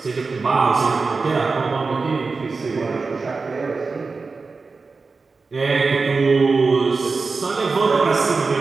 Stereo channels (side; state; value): left; quieter; 4.2 dB